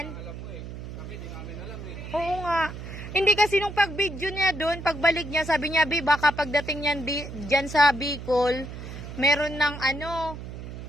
Oo nga. Hindi kasi nung pag-video niya dun, pagbalik niya, sabi niya, baka pagdating niyan dyan sa Bicol, meron ng ano,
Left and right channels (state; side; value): noise; right; hum, 10 dB below the sound